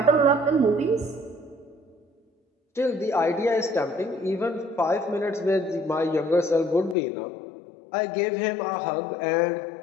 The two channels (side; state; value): right; drops out; at 7.0 s